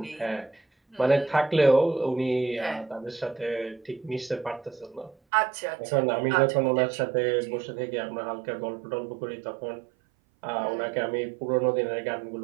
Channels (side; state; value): left; drops out; at 5.2 s